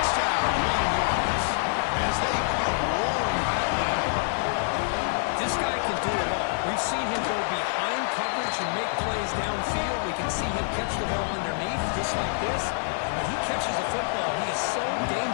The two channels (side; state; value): right; silent; digital silence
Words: Long-Horns, as they come roaring back in. This guy can do it all. We've seen him go behind coverage and make plays downfield. We can see him catch the ball underneath, just like this. When he catches the football, he is so